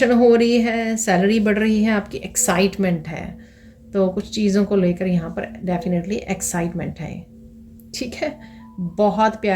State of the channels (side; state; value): both; identical; correlation 1.00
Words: हो रही है, सैलरी बढ़ रही है, आपकी एक्साइटमेंट है, तो कुछ चीज़ों को लेकर यहाँ पर डेफिनेटली एक्साइटमेंट है, ठीक है। बहुत